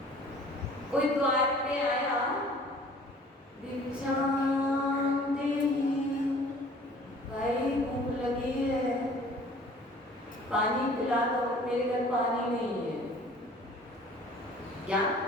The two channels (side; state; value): both; normal; correlation 0.50